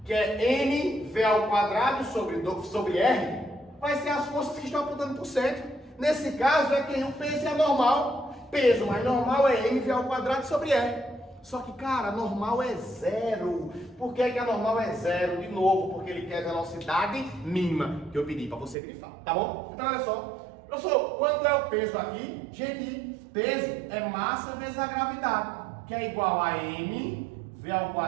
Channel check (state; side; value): drops out; left; at 18.8 s